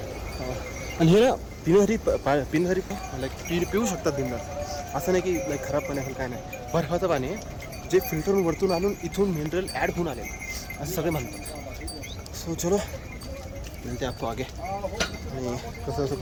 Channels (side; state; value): both; identical; correlation 1.00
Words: आणि हे ना पिण्यासाठी लाईक पिऊ शकतात बिंदास. असं नाही की लाईक खराब पाणी असेल, काय नाही. बर्फाचं पाणी आहे जे फिल्टरून वरतून आणून इथून मिनरल ॲड होऊन आले असं सगळे म्हणतात. सो चलो मिळते आपको आगे. आणि कसं कसं